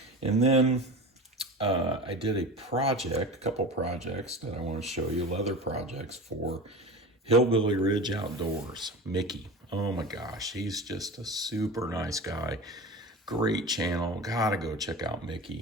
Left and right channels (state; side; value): normal; both; correlation 0.31